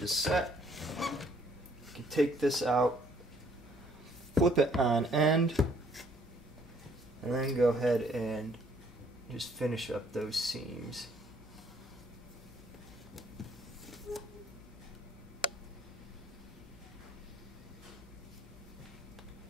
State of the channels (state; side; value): normal; both; correlation 0.64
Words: set, you can take this out, flip it on end, and then go ahead and just finish up those seams.